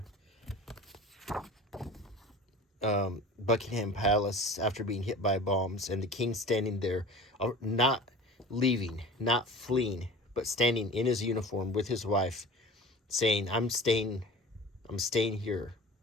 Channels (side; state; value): both; normal; correlation 0.39